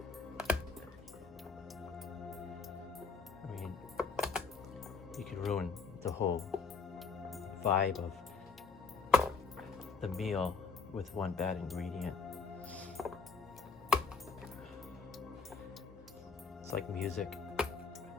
I mean, you could ruin the whole vibe of the meal with one bad ingredient. It's like music.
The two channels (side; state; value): right; quieter; 4.8 dB